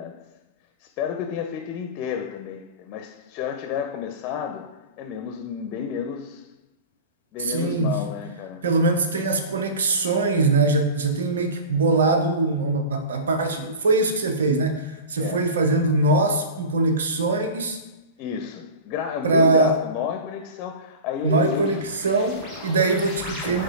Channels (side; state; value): both; inverted; correlation -0.32